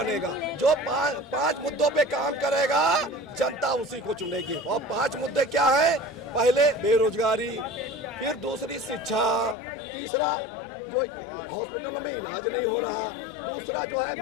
जो 5 मुद्दों पे काम करेगा, जनता उसी को चुनेगी। और 5 मुद्दे क्या है? पहले बेरोजगारी, फिर दूसरी शिक्षा, तीसरा जो हॉस्पिटलों में इलाज नहीं हो रहा, दूसरा जो है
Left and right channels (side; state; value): right; drops out; at 9.6 s